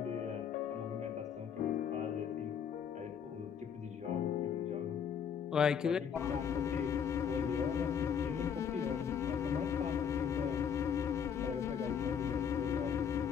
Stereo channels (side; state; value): right; quieter; 7.6 dB